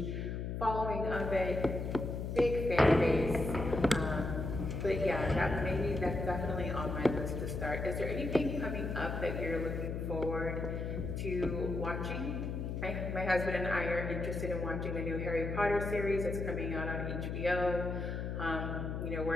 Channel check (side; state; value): left; noise; hum, 3 dB below the sound